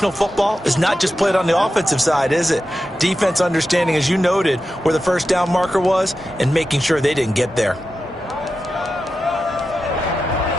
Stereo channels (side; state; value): both; normal; correlation 0.91